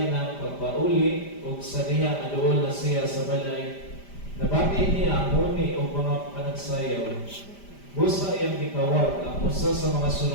ng pagpauli ug sa diha aduol na siya sa balay. Nabati niya ang huni o mga panagsayaw. Busa iyang gikawag ang usa sa mga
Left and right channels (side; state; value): right; late; 5.0 ms